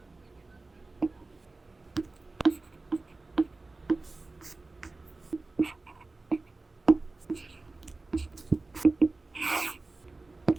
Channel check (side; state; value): left; quieter; 3.4 dB